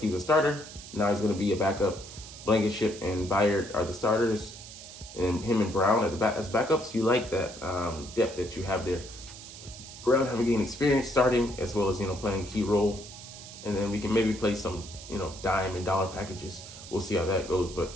was a starter. Now he's going to be a backup. Blankenship and Byard are the starters, and him and Brown as backups. You like that depth that you have there. Brown having gained experience starting, as well as playing a key role, and then we can maybe play some dime and dollar packages. We'll see how that goes. But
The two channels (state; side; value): noise; right; hiss, 14 dB below the sound